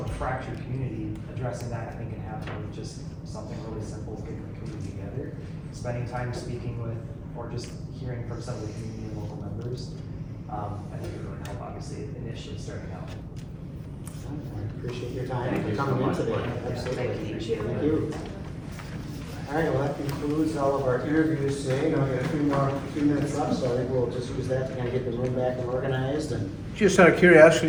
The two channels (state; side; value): identical; both; correlation 1.00